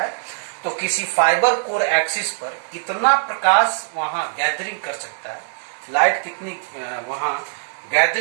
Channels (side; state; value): left; silent; digital silence